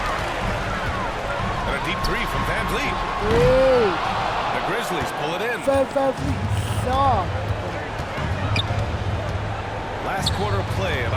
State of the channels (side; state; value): both; identical; correlation 1.00